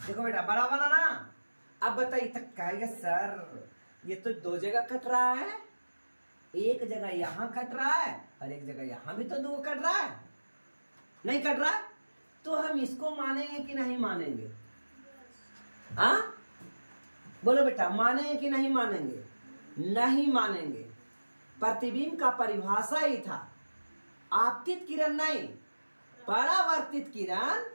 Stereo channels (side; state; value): both; inverted; correlation -1.00